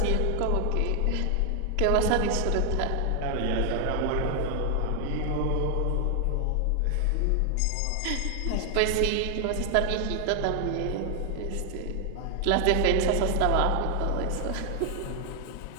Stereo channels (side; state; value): both; different; correlation 0.00